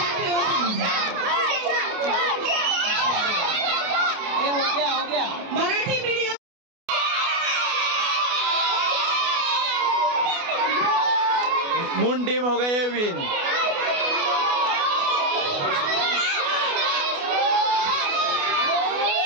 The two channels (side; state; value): left; late; 28 ms